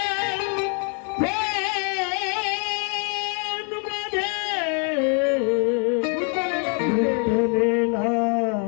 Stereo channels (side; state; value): right; quieter; 39.9 dB